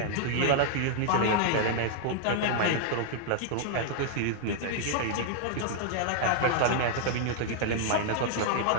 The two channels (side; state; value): both; different; correlation -0.01